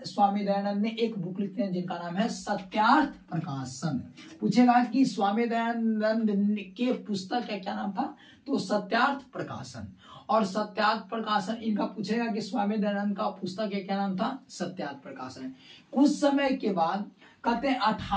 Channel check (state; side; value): identical; both; correlation 1.00